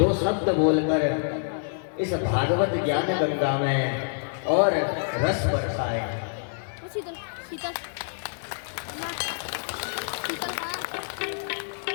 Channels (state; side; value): silent; right; digital silence